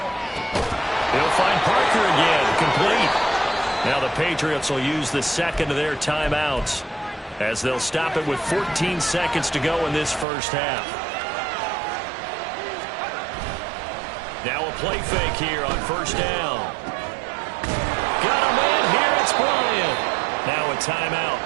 He'll find Parker again. Complete. Now the Patriots will use the second of their timeouts as they'll stop it with 14 seconds to go in this first half. Now a play fake here on first down. Got a man here. It's Bryant. Now a timeout.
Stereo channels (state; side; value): drops out; left; at 10.2 s